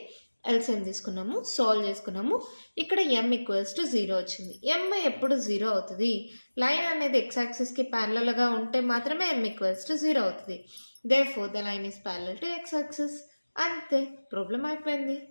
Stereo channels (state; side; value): inverted; both; correlation -1.00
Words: ఎల్సిఎం తీసుకున్నాము, సాల్వ్ చేసుకున్నాము. ఇక్కడ m ఈక్వల్స్ టు 0 వచ్చింది. m ఎప్పుడు 0 అవుతుంది? లైన్ అనేది x యాక్సిస్కి ప్యారలల్గా ఉంటే మాత్రమే m ఈక్వల్స్ టు 0 అవుతుంది. Therefore, the line is parallel to x axis. అంతే, ప్రాబ్లం అయిపోయింది.